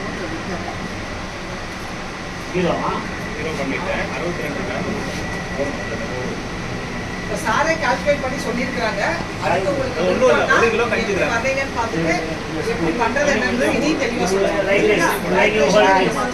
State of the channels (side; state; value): both; identical; correlation 1.00